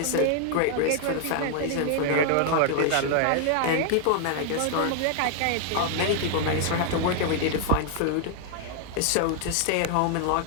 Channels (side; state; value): both; different; correlation 0.00